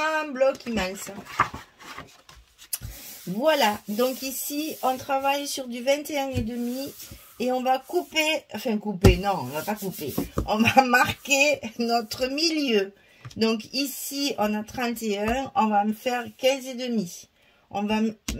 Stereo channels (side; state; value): both; identical; correlation 1.00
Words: bloc immense. Voilà, donc ici, on travaille sur du 21,5 et on va couper, enfin couper, non, on va pas couper, on va marquer notre milieu. Donc ici, on a 31, on va me faire 15,5. On va